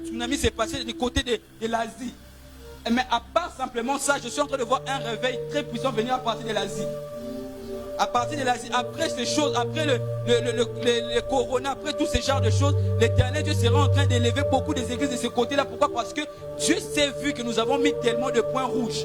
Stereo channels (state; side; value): identical; both; correlation 1.00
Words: s'est passé du côté de l'Asie. Mais à part simplement ça, je suis en train de voir un réveil très puissant venir à partir de l'Asie. À partir de l'Asie, après ces choses, après le corona, après tous ces genres de choses, l'Éternel Dieu sera en train d'élever beaucoup des églises de ce côté-là. Pourquoi? Parce que Dieu s'est vu que nous avons mis tellement de points rouges.